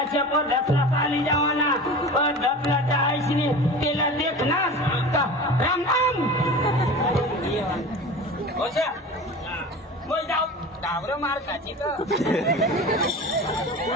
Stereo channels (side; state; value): both; normal; correlation 0.34